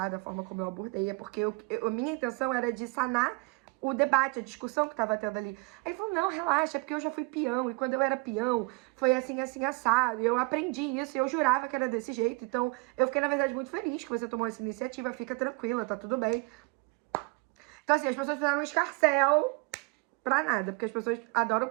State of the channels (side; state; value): left; quieter; 28.2 dB